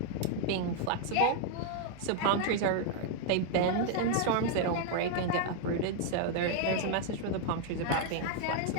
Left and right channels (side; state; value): both; different; correlation 0.00